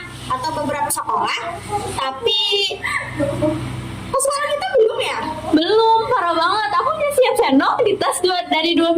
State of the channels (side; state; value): both; identical; correlation 1.00